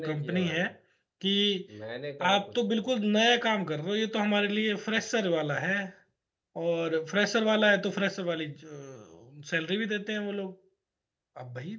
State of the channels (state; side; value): identical; both; correlation 1.00